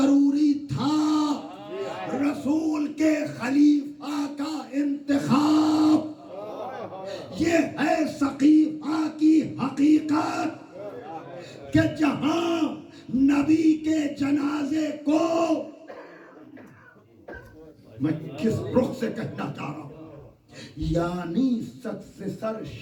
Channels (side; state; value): both; identical; correlation 1.00